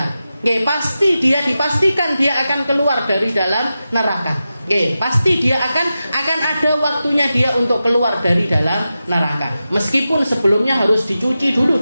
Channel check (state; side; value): inverted; both; correlation -0.92